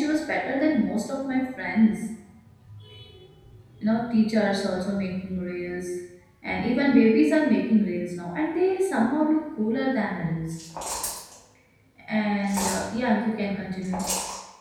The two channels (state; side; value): identical; both; correlation 1.00